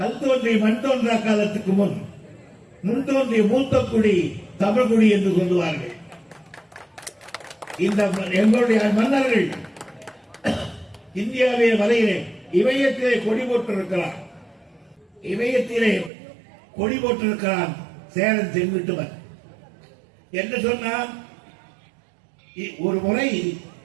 தோன்றி மண் தோன்றா காலத்துக்கு முன் தோன்றிய மூத்த குடி தமிழ் குடி என்று சொல்லுவார்கள். இந்த எங்களுடைய மன்னர்கள் இந்தியாவிய வலையிலே இமயத்திலே கொடி போட்டிருக்கிறார். இமயத்திலே கொடி போட்டிருக்கிறான் சேரன் செங்குட்டுவன் என்று சொன்னான். ஒரு முறை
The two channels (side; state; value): left; drops out; at 16.1 s